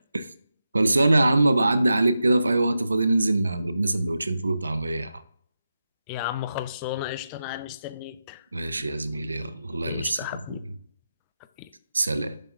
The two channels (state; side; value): inverted; both; correlation -0.89